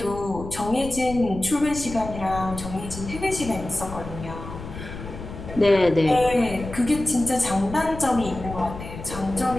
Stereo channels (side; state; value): left; noise; rumble, 11 dB below the sound